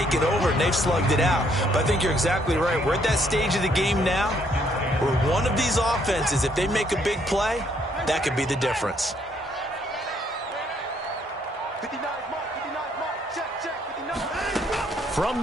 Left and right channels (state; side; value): normal; both; correlation 0.69